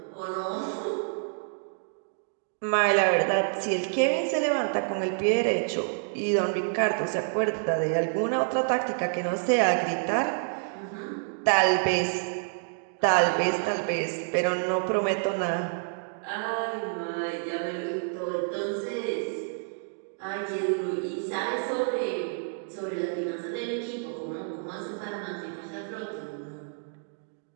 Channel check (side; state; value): left; silent; digital silence